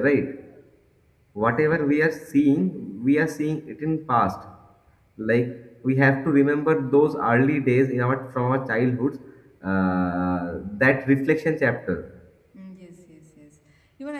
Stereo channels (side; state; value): both; identical; correlation 1.00